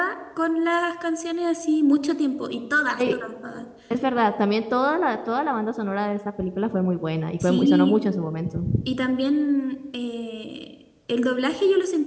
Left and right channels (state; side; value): identical; both; correlation 1.00